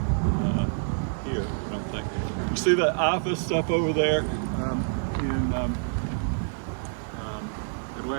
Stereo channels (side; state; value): left; silent; 60 dB below the other